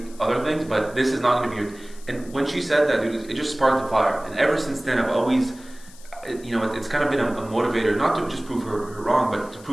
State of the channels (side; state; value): left; noise; hiss, 22 dB below the sound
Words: other things, but this is not going to be your. And when she said that, dude, it just sparked a fire. And ever since then, I've always, it's kind of been a motivator, not to just prove her wrong, but to